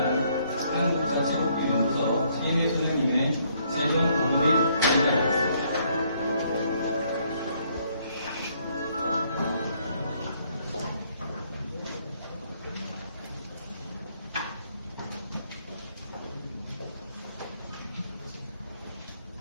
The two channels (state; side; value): inverted; both; correlation -0.68